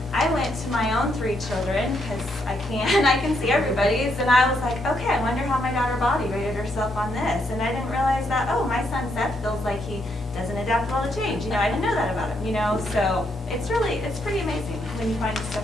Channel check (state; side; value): normal; both; correlation 0.76